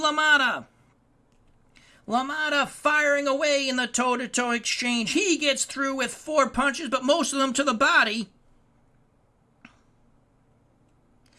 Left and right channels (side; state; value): both; identical; correlation 1.00